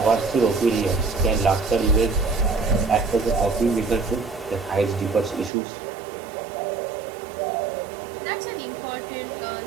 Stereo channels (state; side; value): drops out; left; at 5.5 s